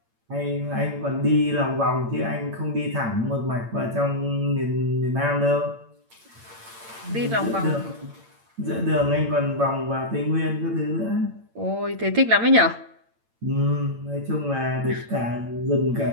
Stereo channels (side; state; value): left; late; 8.8 ms